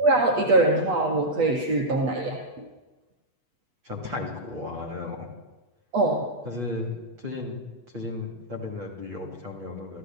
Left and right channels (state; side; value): late; left; 8.2 ms